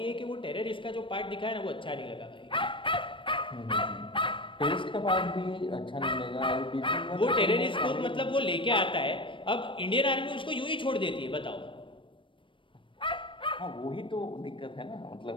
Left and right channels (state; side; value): late; right; 0.25 ms